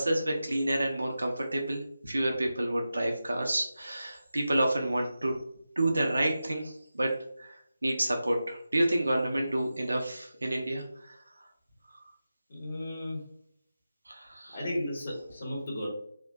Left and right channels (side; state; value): both; inverted; correlation -0.92